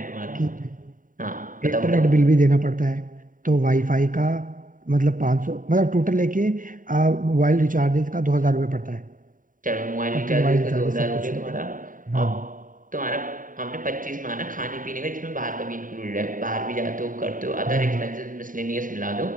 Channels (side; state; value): left; late; 0.39 ms